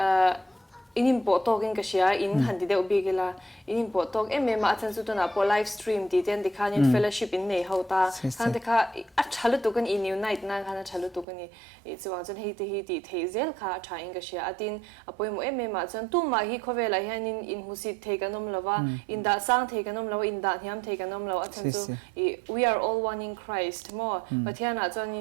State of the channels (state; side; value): drops out; left; at 11.2 s